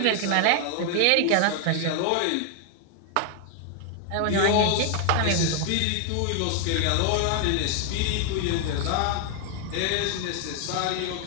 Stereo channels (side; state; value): both; different; correlation 0.00